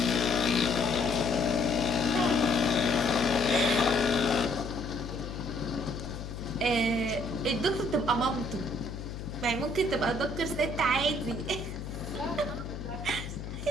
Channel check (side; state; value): left; noise; hum, 8 dB below the sound